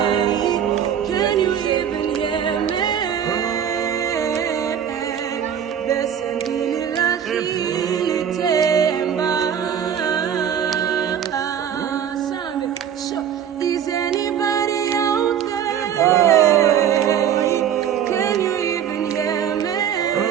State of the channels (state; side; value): quieter; left; 8.8 dB